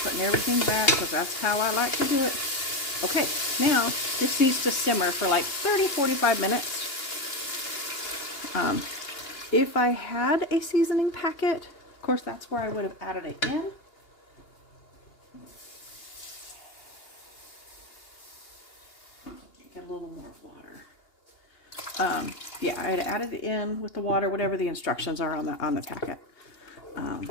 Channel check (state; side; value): late; right; 2.8 ms